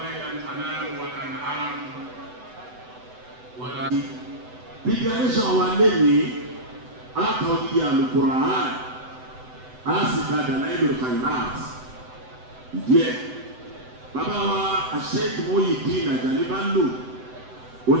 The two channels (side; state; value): left; late; 7.9 ms